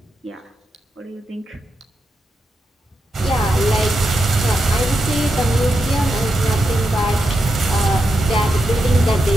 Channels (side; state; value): both; normal; correlation 0.86